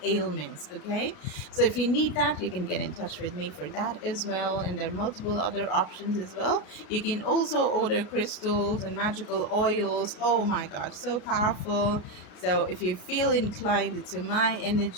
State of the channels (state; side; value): late; right; 33 ms